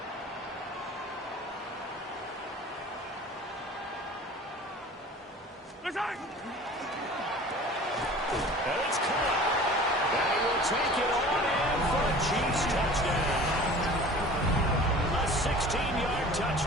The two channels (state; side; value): normal; both; correlation 0.43